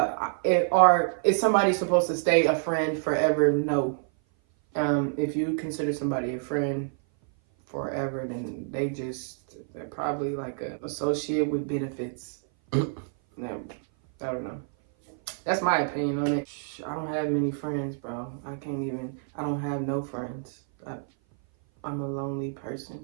is somebody supposed to stay a friend forever? No. If you consider somebody a friend forever, then they're probably like an associate with benefits. No, I don't know. That's my opinion on it. I don't have many friends, bro. I don't have no friends. I'm a lonely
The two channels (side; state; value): left; silent; 56 dB below the other